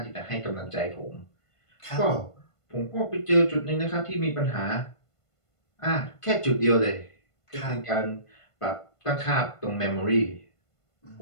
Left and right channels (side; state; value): right; late; 1.5 ms